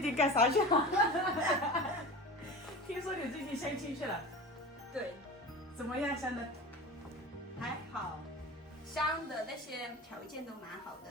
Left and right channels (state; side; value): normal; both; correlation 0.33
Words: 干啥去了？听说你最近相亲去了，对，怎么样，相的？还好，相的那些条件都蛮好